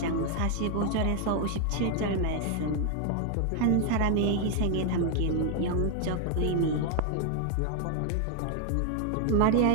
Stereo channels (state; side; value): different; both; correlation 0.00